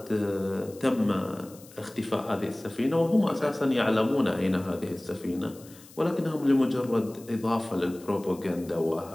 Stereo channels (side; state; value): left; noise; hiss, 22 dB below the sound